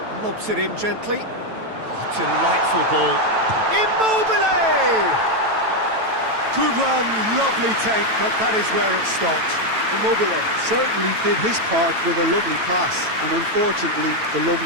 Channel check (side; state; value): left; late; 9.1 ms